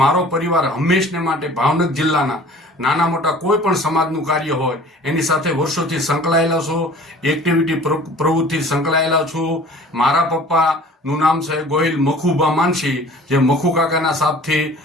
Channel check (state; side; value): normal; both; correlation 0.47